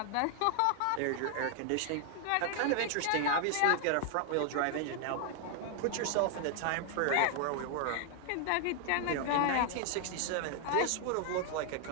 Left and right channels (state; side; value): different; both; correlation 0.00